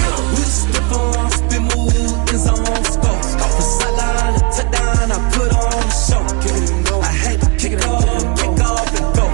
We just spit on, spin move, in zone, let's go. From sideline to touchdown, I put on the show. I had to kick off and go.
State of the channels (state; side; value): quieter; left; 29.6 dB